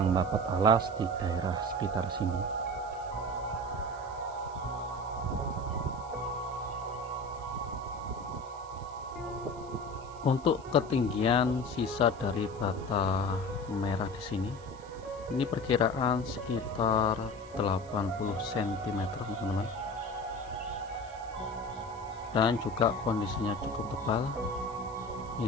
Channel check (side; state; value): right; noise; hiss, 24 dB below the sound